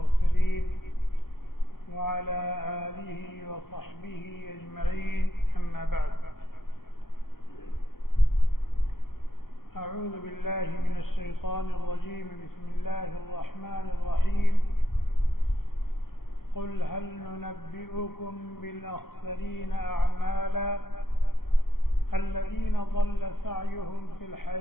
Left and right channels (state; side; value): late; right; 0.93 ms